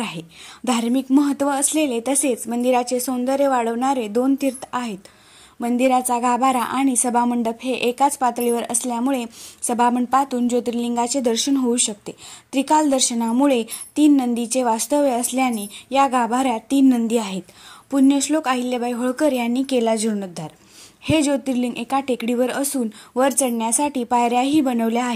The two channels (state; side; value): identical; both; correlation 1.00